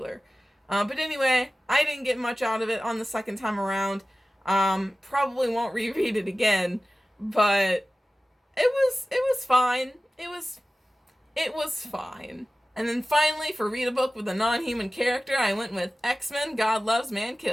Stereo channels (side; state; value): both; normal; correlation 0.96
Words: But anyway, I didn't get much out of it on the second time around. Probably won't reread it again, but it was fine. It was fine. And then finally, for read a book with a non-human character, I went with X-Men God Loves, Man